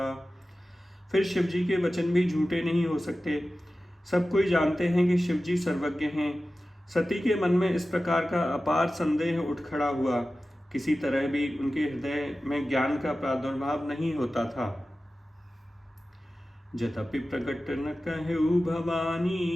फिर शिव जी के वचन भी झूठे नहीं हो सकते। सब कोई जानते हैं कि शिव जी सर्वज्ञ हैं। सती के मन में इस प्रकार का अपार संदेह उठ खड़ा हुआ। किसी तरह भी उनके हृदय में ज्ञान का प्रादुर्भाव नहीं होता था। जतपि प्रकट न कहु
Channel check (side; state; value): both; normal; correlation 0.95